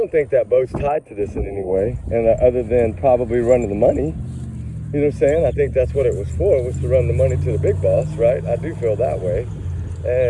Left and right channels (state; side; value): identical; both; correlation 1.00